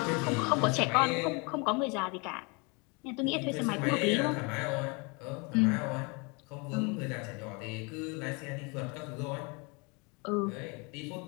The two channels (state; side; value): quieter; right; 30.4 dB